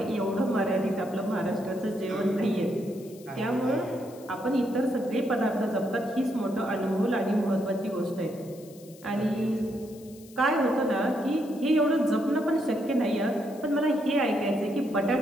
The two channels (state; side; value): noise; left; hiss, 23 dB below the sound